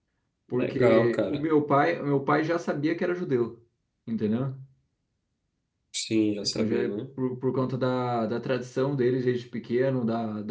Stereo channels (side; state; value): both; identical; correlation 1.00